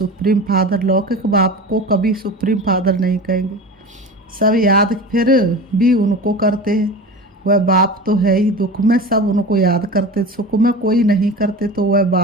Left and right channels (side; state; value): both; normal; correlation 0.32